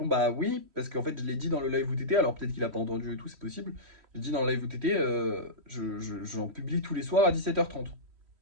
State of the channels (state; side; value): late; left; 3.1 ms